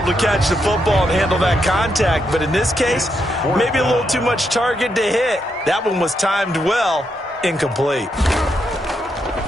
to catch the football and handle that contact, but in this case, maybe a little too much target to hit. That one was timed well, incomplete.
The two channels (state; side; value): normal; both; correlation 0.81